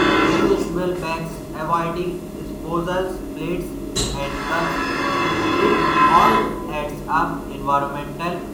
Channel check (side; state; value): both; identical; correlation 1.00